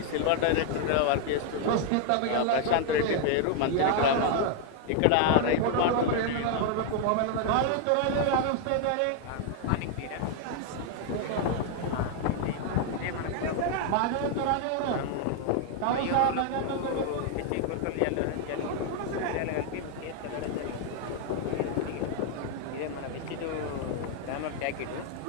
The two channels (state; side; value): different; both; correlation 0.00